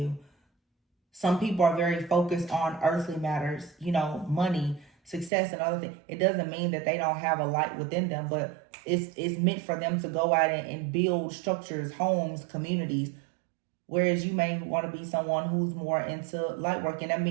Some people are very focused on earthly matters, money, success, and other things. It doesn't mean that they don't have a light within them, but it's meant for them to go out and build structures, homes, communities. Whereas you may want to be someone who's more into light work.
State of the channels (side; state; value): left; drops out; at 5.3 s